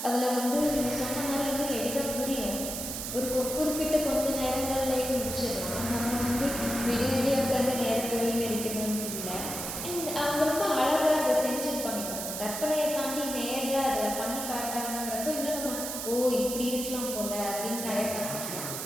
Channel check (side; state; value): right; noise; hiss, 5 dB below the sound